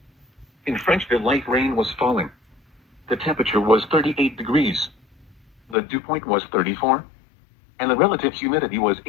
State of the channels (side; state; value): right; drops out; at 5.8 s